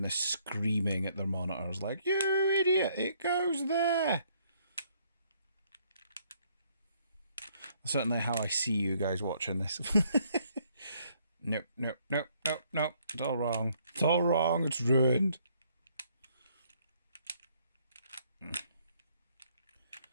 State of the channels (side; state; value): both; inverted; correlation -0.67